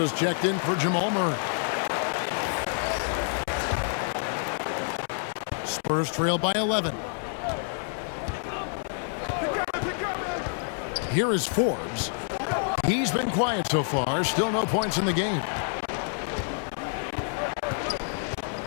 checked in for Jamal Murray. Spurs trail by 11. Here is Forbes. He's been quiet so far. Still no points in the game.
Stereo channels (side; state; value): right; silent; 60 dB below the other